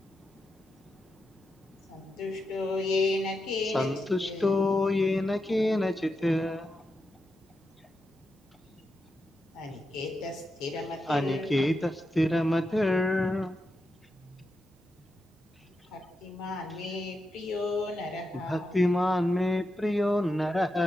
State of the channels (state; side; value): normal; both; correlation 0.87